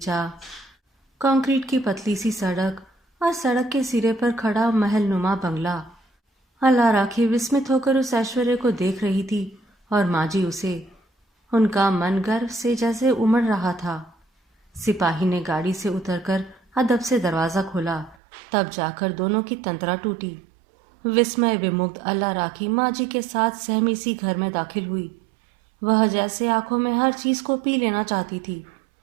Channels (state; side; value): drops out; left; at 18.2 s